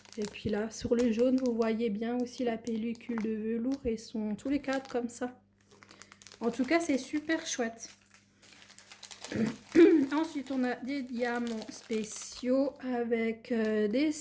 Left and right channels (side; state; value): both; identical; correlation 1.00